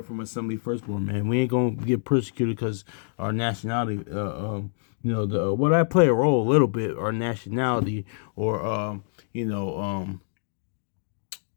from Assembly Firstborn, man, we ain't going to get persecuted because our nationality, what I play a role a little bit, our nationality, or,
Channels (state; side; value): silent; right; digital silence